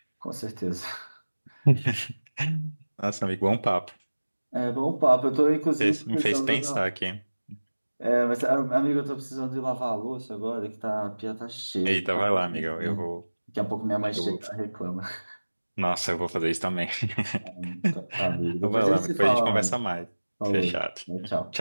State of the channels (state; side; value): inverted; both; correlation -1.00